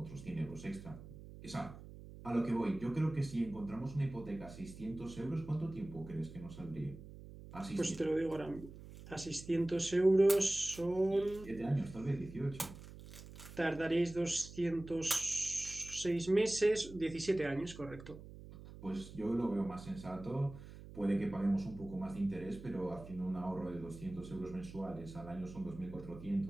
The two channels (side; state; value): right; noise; hum, 15 dB below the sound